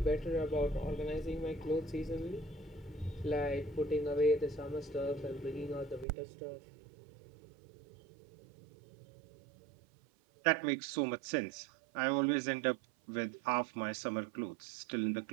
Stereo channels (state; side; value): drops out; left; at 6.1 s